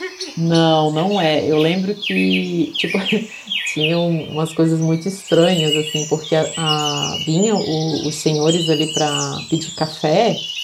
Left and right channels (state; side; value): identical; both; correlation 1.00